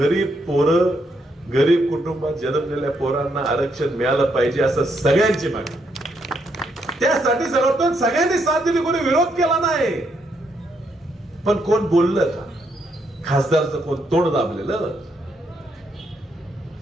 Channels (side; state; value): both; normal; correlation 0.76